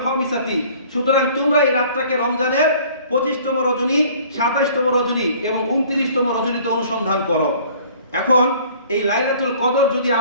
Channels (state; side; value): inverted; both; correlation -0.52